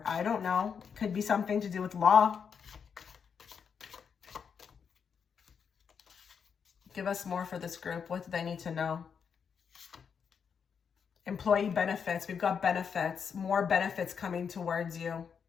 I don't know. Could be something to do with law. Give us more for this group. What do they need to know? Employee benefits. We've got benefits. More benefits coming towards you.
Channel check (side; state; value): right; quieter; 6.7 dB